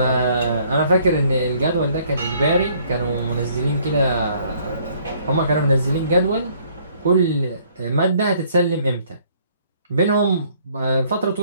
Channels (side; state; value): both; inverted; correlation -0.62